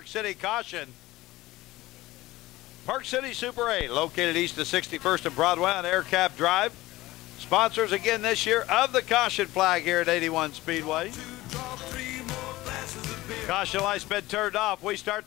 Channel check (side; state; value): right; quieter; 18.1 dB